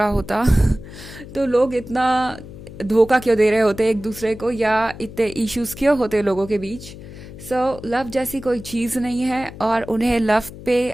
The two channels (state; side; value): noise; left; hum, 15 dB below the sound